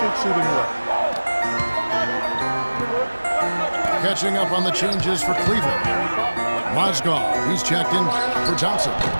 suit him well. Catching up on the changes for Cleveland. Mozgov, he's checked in for Johnson.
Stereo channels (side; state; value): both; inverted; correlation -1.00